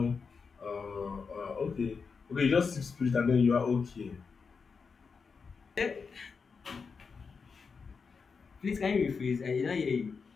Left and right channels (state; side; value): quieter; right; 5.3 dB